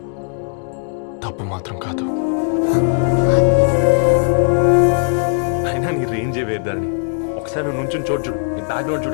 తప్పు మాత్రం కాదు. అయినా నీ రేంజే వేరు ధరణి. ఒకసారి నువ్వు నుంచుని చూడు, నీ బ్యాక్గ్రౌండ్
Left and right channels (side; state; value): right; silent; digital silence